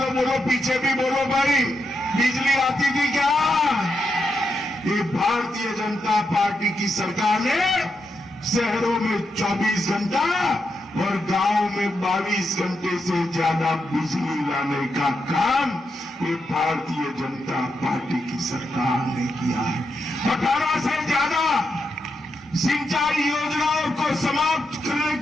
बोलो, पीछे भी बोलो भाई, बिजली आती थी क्या? ये भारतीय जनता पार्टी की सरकार ने शहरों में 24 घंटा और गांव में 22 घंटे से ज्यादा बिजली लाने का काम ये भारतीय जनता पार्टी की सरकार ने किया है। 18 से ज्यादा सिंचाई योजनाओं को समाप्त करने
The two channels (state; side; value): normal; both; correlation 0.84